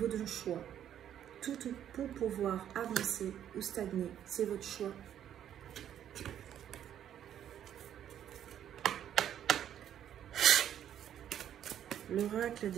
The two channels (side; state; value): left; quieter; 10.2 dB